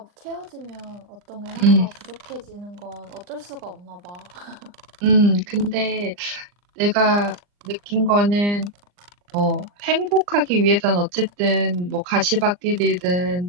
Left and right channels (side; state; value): left; late; 39 ms